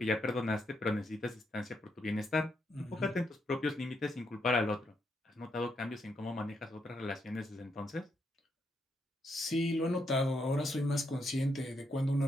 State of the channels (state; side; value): normal; both; correlation 0.79